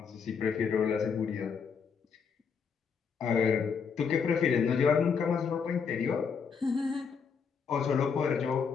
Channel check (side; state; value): right; quieter; 6.1 dB